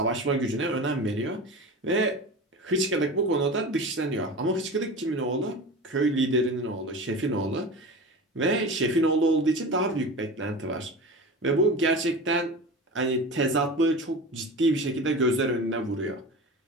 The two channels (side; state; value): both; normal; correlation 0.31